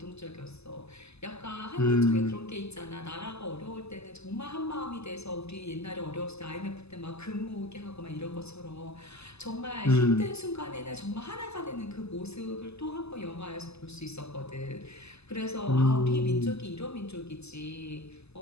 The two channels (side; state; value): right; late; 0.79 ms